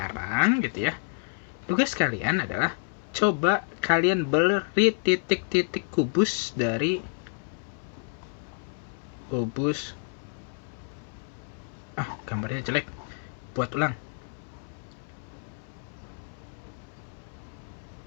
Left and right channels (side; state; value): right; silent; 59 dB below the other